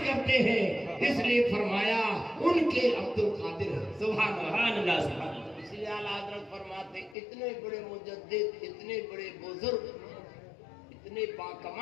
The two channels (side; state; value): right; drops out; at 7.2 s